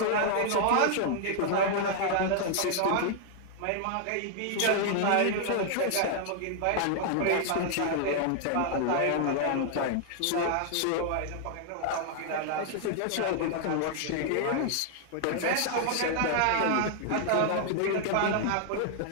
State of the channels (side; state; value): both; different; correlation 0.00